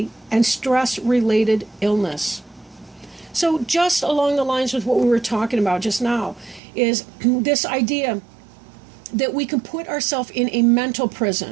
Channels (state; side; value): drops out; left; at 6.6 s